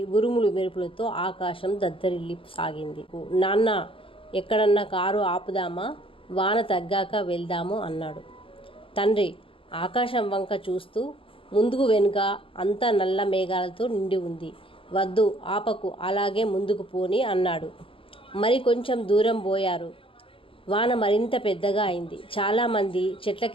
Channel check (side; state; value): right; late; 0.26 ms